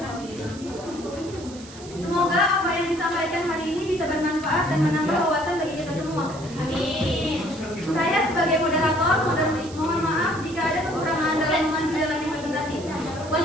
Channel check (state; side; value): noise; right; hiss, 18 dB below the sound